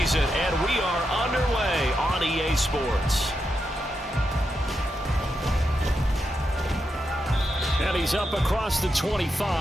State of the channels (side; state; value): both; normal; correlation 0.85